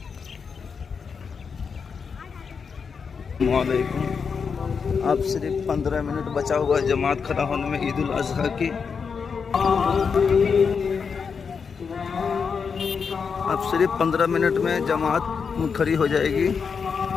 السلام علیکم. اب صرف 15 منٹ بچا ہوا ہے جماعت کھڑا ہونے میں عید الاضحیٰ کی. اب صرف 15 منٹ میں جماعت کھڑی ہو جائے گی.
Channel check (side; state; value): right; quieter; 5.9 dB